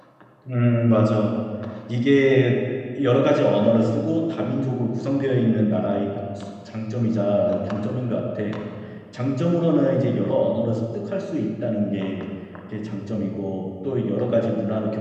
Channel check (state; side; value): identical; both; correlation 1.00